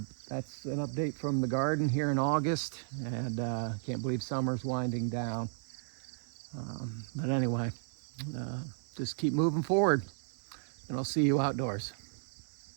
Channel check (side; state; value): left; silent; digital silence